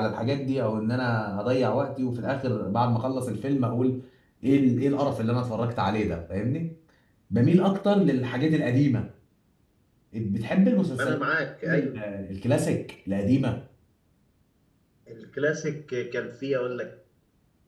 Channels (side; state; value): both; identical; correlation 1.00